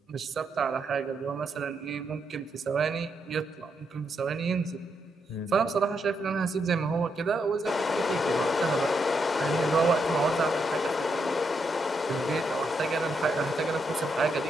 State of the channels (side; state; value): both; normal; correlation 0.80